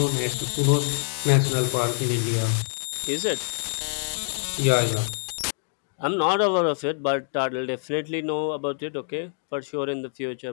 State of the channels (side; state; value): right; silent; digital silence